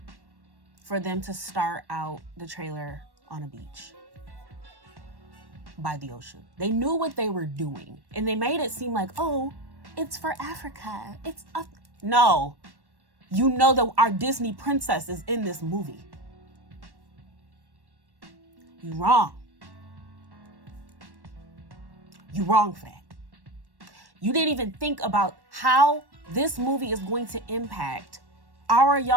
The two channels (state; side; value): late; left; 1.1 ms